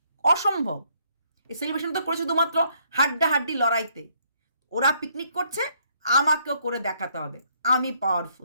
অসম্ভব। এই সেলিব্রেশন তো করেছো শুধুমাত্র হাড্ডাহাড্ডি লড়াইতে, ওরা পিকনিক করছে, আমাকেও করে দেখাতে হবে আমি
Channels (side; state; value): both; inverted; correlation -0.68